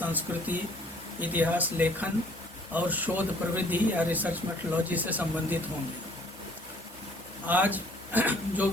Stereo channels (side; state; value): both; normal; correlation 0.57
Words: इतिहास लेखन और शोध प्रविधि या रिसर्च मेथोडोलॉजी से संबंधित होंगे। आज जो